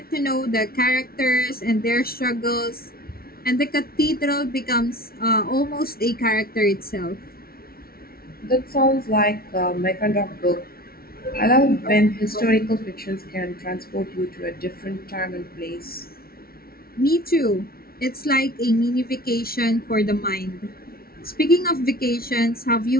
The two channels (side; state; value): right; late; 0.44 ms